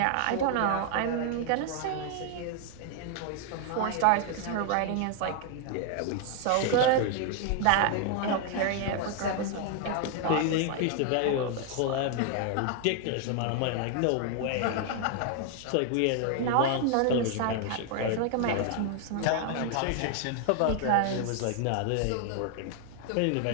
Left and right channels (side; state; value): both; different; correlation 0.00